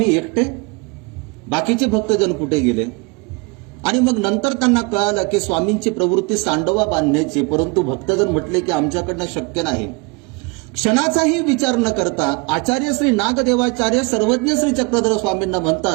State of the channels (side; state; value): left; quieter; 28.3 dB